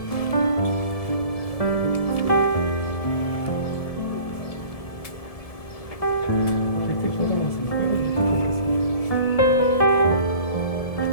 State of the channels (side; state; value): right; late; 1.7 ms